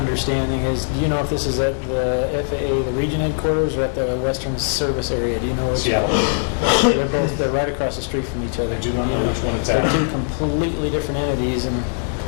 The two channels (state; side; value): silent; right; digital silence